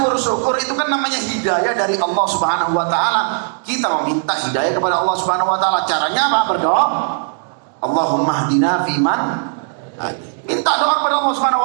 itu kan namanya hidayah dari Allah Subhanahu Wa Taala. Kita meminta hidayah kepada Allah Subhanahu Wa Taala. Caranya apa? Berdoa. Allahumma hdina fiman. Minta doa kepada Allah Subhanahu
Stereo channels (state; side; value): silent; left; digital silence